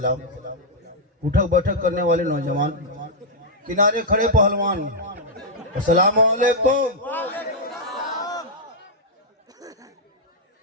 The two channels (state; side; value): normal; both; correlation -0.06